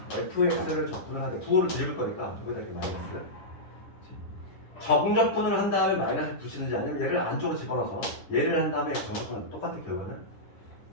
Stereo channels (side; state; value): right; late; 10 ms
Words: fx를 접근을 하되 부호를 뒤집을 거니까 여기다 이렇게 마이너스 정적분을 한 다음에 마이너스를 붙이는지 아니면 얘를 안쪽으로 집어넣어서 얘를 한 다음에 정적분은 똑같은 결과는